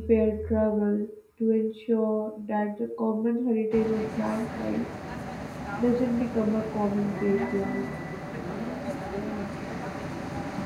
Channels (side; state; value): both; identical; correlation 1.00